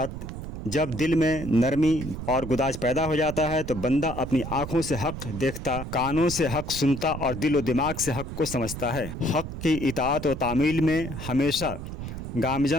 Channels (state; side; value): noise; right; rumble, 8 dB below the sound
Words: جب دل میں نرمی اور گداز پیدا ہو جاتا ہے تو بندہ اپنی آنکھوں سے حق دیکھتا، کانوں سے حق سنتا اور دل و دماغ سے حق کو سمجھتا ہے۔ حق کی اطاعت و تعمیل میں ہمیشہ